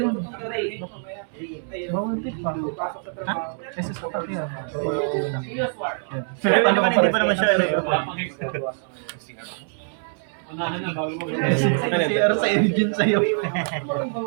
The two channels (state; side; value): silent; left; 62 dB below the other